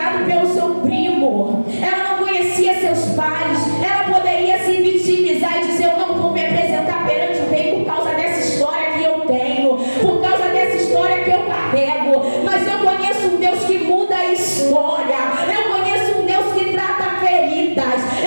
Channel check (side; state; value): both; inverted; correlation -1.00